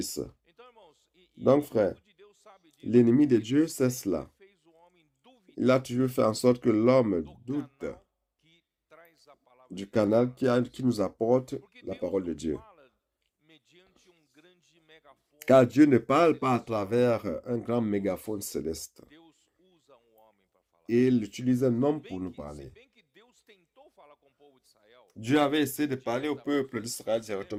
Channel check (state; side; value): identical; both; correlation 1.00